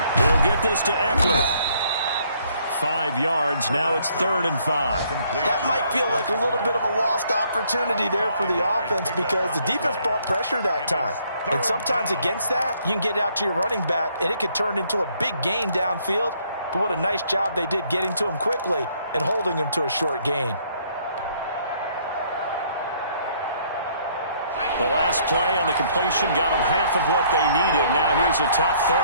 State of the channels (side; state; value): both; inverted; correlation -0.65